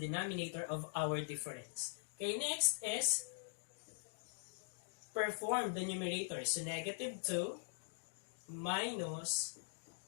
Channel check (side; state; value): right; silent; digital silence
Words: of our difference. Okay, next is perform the numerator. So negative 2 minus